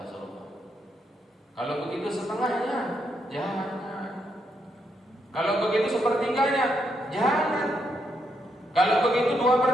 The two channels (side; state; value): both; normal; correlation 0.79